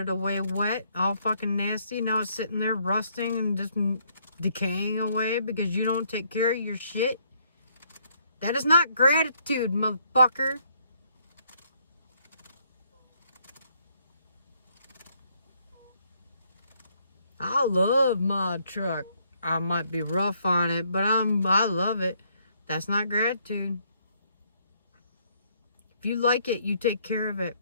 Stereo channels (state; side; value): inverted; both; correlation -0.70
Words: away wet, all fucking nasty? Now it's sitting there rusting and just decaying away because you don't take care of your shit? That is not gratitude, motherfucker. I love my truck. I might be rough on it, but I love it. That's not gratitude. If you like it, you take care of it.